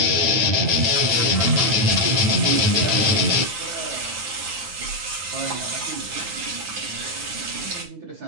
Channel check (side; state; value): left; late; 9.7 ms